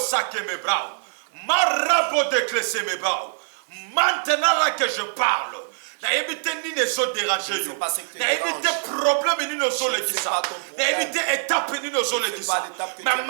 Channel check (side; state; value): left; silent; digital silence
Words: sake me brao, marabo déclesser mes brao. Maintenant là que je parle, na évité ni ne so déranger yo. Na évité problème ni ne so le kisa. Na évité étape ni ne so le kisa. Mais